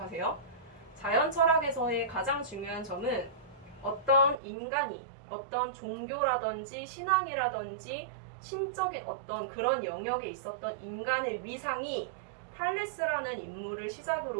자연 철학에서의 가장 중요한 점은 어떤 인간이 어떤 종교라든지 신앙이라든지 신적인 어떤 그런 영역에 있었던 인간의 위상이 탈레스라는 인물을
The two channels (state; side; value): drops out; left; at 4.4 s